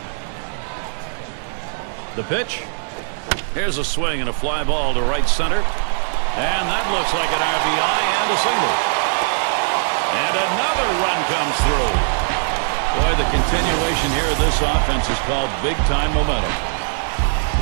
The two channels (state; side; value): silent; left; 66 dB below the other